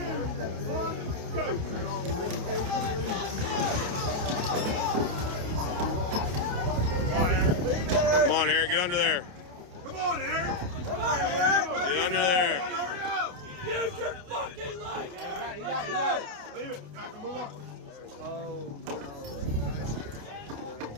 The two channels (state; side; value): late; left; 28 ms